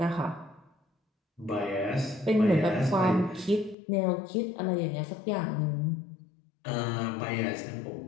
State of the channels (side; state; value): right; drops out; at 3.8 s